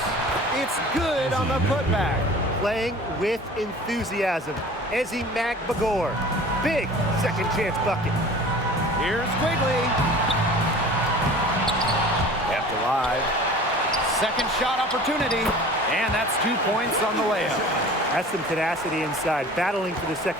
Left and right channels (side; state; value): both; normal; correlation 0.43